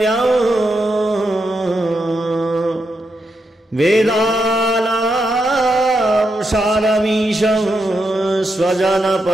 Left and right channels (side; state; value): both; normal; correlation 0.83